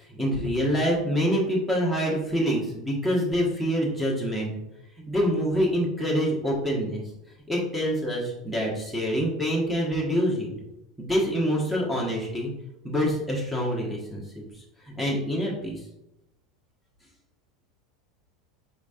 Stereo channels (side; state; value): both; normal; correlation 0.56